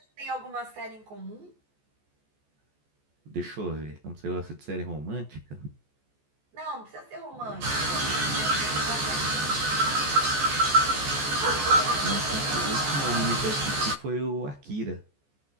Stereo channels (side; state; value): left; late; 14 ms